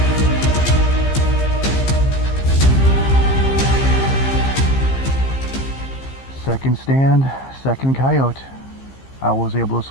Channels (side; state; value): right; late; 15 ms